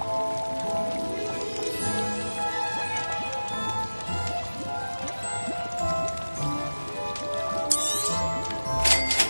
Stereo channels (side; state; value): both; inverted; correlation -1.00